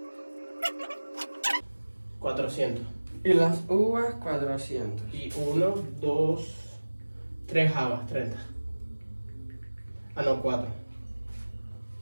$400. Y las uvas, 400. Y 1, 2, 3 habas, 30. Ah, no, 4.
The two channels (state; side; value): inverted; both; correlation -1.00